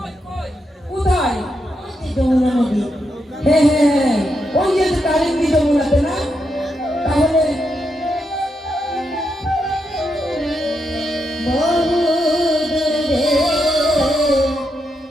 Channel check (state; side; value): normal; both; correlation 0.82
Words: কোথায়? যমুনা নদী। হ্যাঁ হ্যাঁ হ্যাঁ, ওই যে কালিন্দী যমুনাতে না? তাহলে বহু দূরে